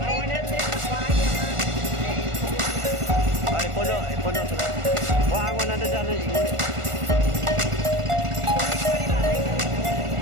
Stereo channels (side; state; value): left; late; 1.4 ms